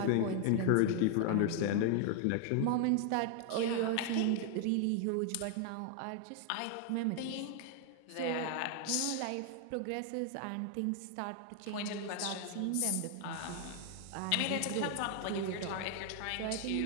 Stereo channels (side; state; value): both; different; correlation 0.00